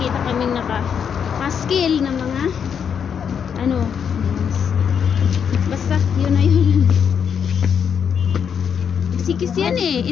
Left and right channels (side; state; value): right; quieter; 7.4 dB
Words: kaming naka-skill na mga ano, basta yun na yun. Sikis yan eh,